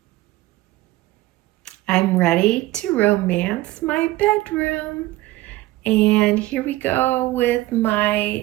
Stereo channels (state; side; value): quieter; left; 17.8 dB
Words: I'm ready to romance my bedroom. And here we go with